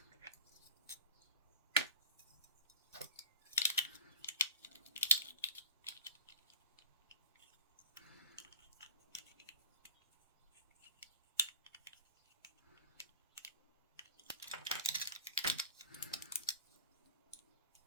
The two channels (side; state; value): both; inverted; correlation -0.36